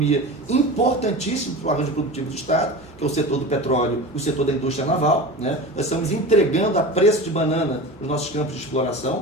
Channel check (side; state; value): both; normal; correlation 0.31